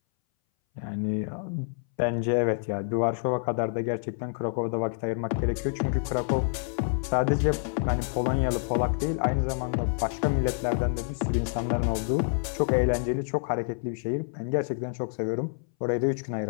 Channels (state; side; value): silent; right; 60 dB below the other